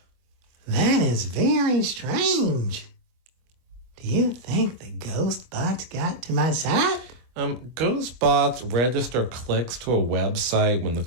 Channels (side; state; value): left; late; 25 ms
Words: That is very strange. Do you think the ghost bots got to my site? Ghost bots register clicks to a website when the